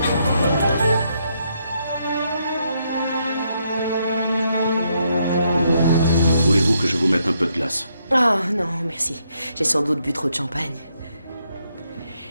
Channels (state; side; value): inverted; both; correlation -0.76